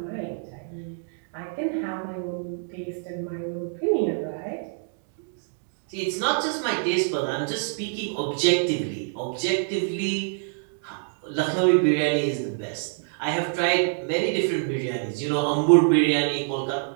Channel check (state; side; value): silent; left; digital silence